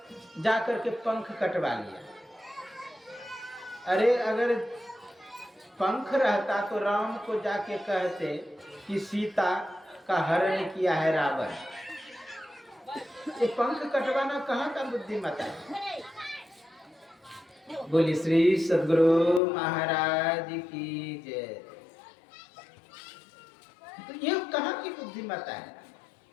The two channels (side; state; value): right; drops out; at 19.4 s